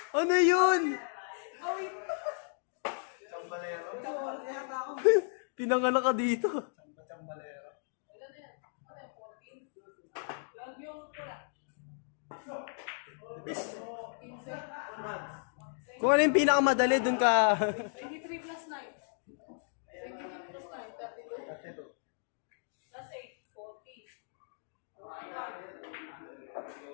Ano yun? Awit! Chambalero. Chambalero kaya tao. Pinanganak ka dito. Chambalero. Ilan na yan? Ano yan? 14? 12 yung pula. Bis. 15? Kung ano yung pinakamadali, dun ka. 23 plus 9. 23 plus 9, 32. That's it. Plus 8, 40.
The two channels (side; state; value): right; silent; digital silence